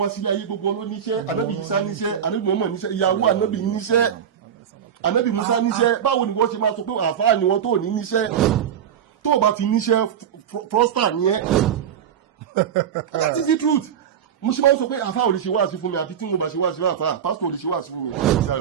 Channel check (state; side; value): quieter; left; 8.7 dB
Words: wá sílé ayé gbogbo ló níṣẹ́ ànábì Ìsá níṣẹ́ ànábì Mùhámádù níṣẹ́ ìyàwó ànábì níṣẹ́ ànábì Mùsá níṣẹ́ báwo ni wọ́n ṣe máa sọ pé àfáà ni wọ́n tó ní níṣẹ́ tó o bá ti níṣẹ́ prosper ni ẹ́ that is the truth mo ṣe máa ń sọ pé àfáà ò lè ṣe wáàsí fún mi àfi tí mo bá ṣe wáàsí fún àfáà pásítọ̀ ò lè ṣe wáàsí fún mi. ṣé